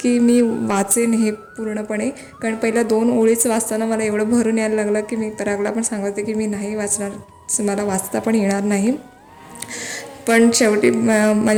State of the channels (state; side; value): identical; both; correlation 1.00